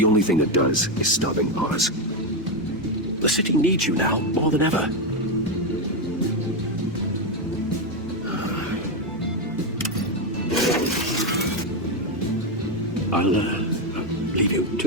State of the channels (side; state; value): both; normal; correlation 0.07